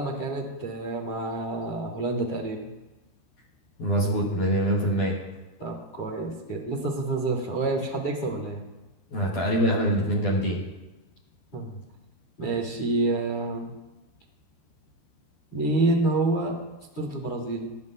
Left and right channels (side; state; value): right; late; 13 ms